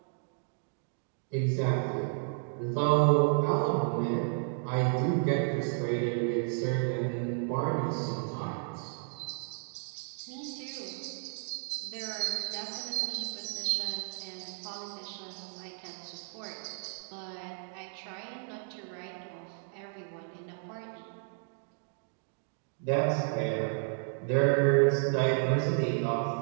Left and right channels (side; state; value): left; silent; 56 dB below the other